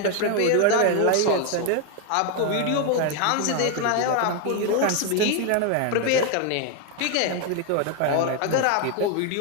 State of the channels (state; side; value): different; both; correlation 0.01